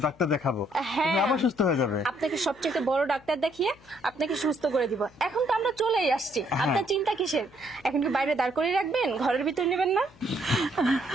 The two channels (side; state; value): left; noise; hum, 26 dB below the sound